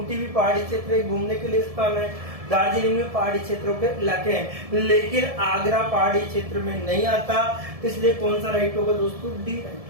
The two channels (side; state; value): left; late; 1.7 ms